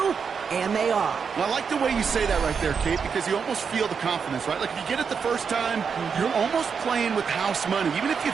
And they are. Well, I like the way you say that right there, Kate, because you almost feel the confidence, right? Like if you get it the first time, you're almost playing with house money. Even if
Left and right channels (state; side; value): quieter; left; 6.2 dB